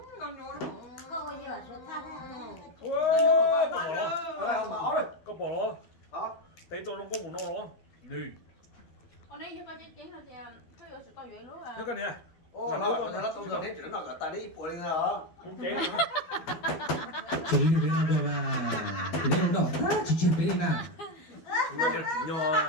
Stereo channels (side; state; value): right; late; 12 ms